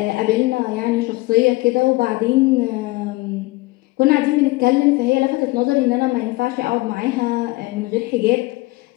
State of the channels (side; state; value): right; quieter; 21.6 dB